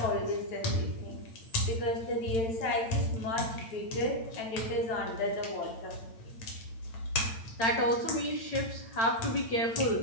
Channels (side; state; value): right; late; 8.9 ms